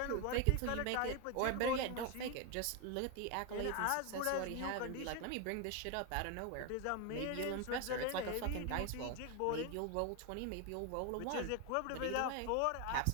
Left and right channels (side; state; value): both; different; correlation 0.01